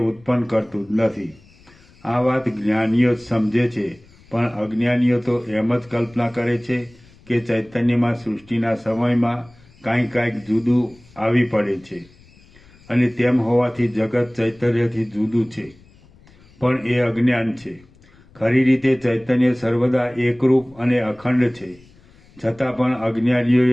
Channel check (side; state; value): left; noise; rumble, 27 dB below the sound